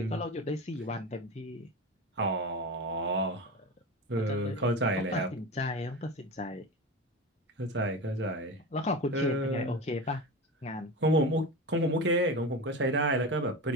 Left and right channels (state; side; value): normal; both; correlation 0.26